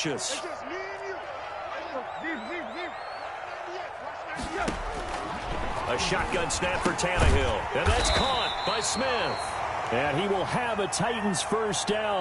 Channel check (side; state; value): both; identical; correlation 1.00